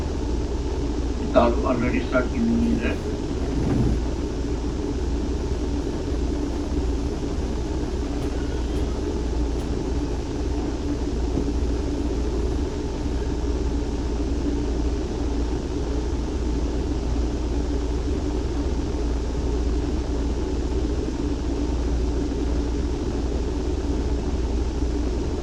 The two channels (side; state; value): both; identical; correlation 1.00